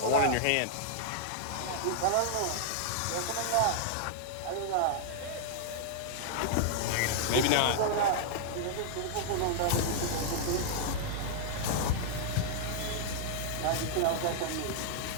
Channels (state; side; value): different; both; correlation -0.01